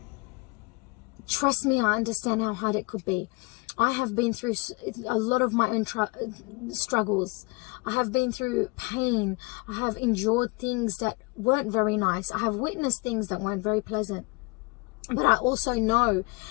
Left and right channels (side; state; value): right; quieter; 26.6 dB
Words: Trust me, I understand how hard it could be. I have been through a lot of my own struggles. I have been through pain. I have endured things that weren't very nice. I have witnessed things that weren't very pleasant. But I also know